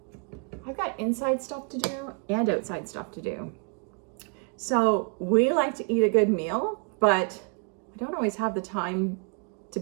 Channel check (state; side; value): quieter; left; 35.0 dB